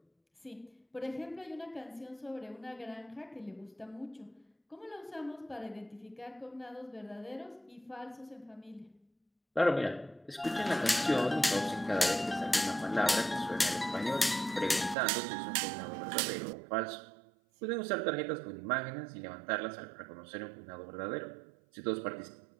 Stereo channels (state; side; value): drops out; left; at 15.0 s